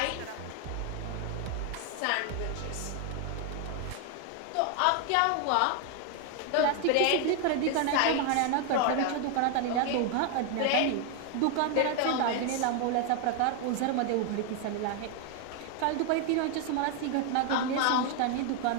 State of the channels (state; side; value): different; both; correlation 0.01